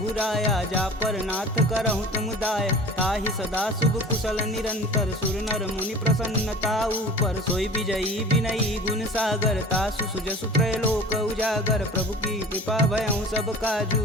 जा पर नाथ करहु तुम दाय। ताहि सदा शुभ कुशल निरंतर सुर नर मुनि प्रसन्नता ऊपर। सोई विजयी विनयी गुण सागर तासु सुजसु त्रैलोक उजागर। प्रभु की कृपा भयउ सब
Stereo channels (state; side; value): normal; both; correlation 0.41